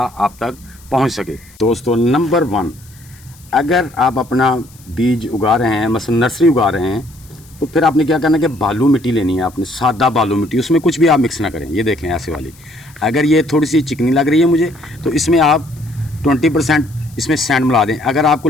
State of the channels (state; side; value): noise; left; hiss, 26 dB below the sound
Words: तक पहुंच सके। दोस्तों, नंबर 1, अगर आप अपना बीज उगा रहे हैं, मसलन नर्सरी उगा रहे हैं, तो फिर आपने क्या करना है कि बालू मिट्टी लेनी है। आपने सादा बालू मिट्टी, उसमें कुछ भी आप मिक्स ना करें। ये देखें ऐसे वाली। अगर ये थोड़ी सी चिकनी लग रही है मुझे, तो इसमें आप 20% इसमें सैंड मिला दें। अगर आपको